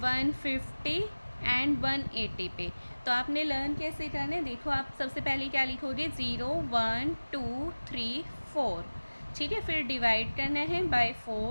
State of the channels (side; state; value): both; inverted; correlation -1.00